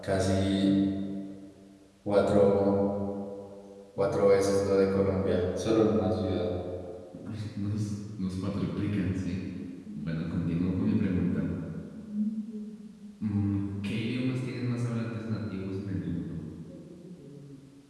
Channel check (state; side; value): identical; both; correlation 1.00